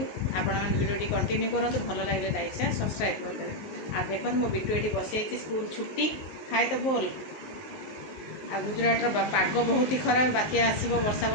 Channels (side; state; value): right; late; 19 ms